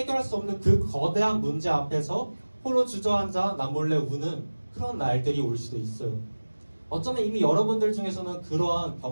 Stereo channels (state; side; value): inverted; both; correlation -1.00